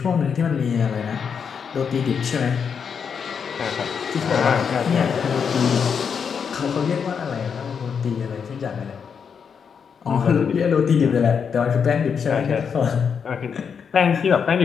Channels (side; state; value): right; quieter; 6.7 dB